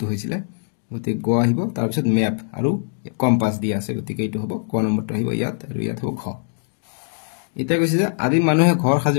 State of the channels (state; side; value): silent; right; digital silence